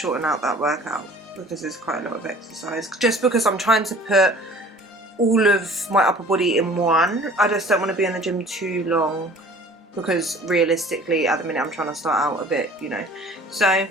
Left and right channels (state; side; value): normal; both; correlation 0.48